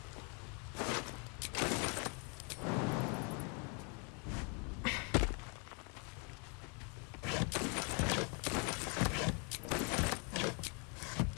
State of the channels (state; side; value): quieter; right; 36.2 dB